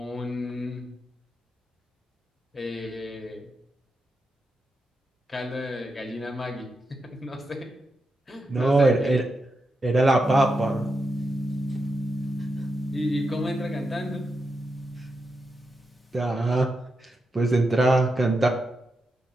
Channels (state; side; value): normal; both; correlation 0.87